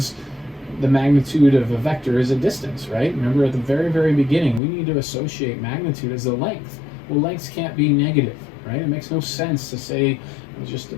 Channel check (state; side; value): drops out; right; at 4.6 s